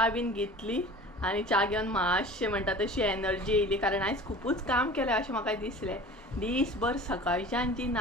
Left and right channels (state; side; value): normal; both; correlation 0.41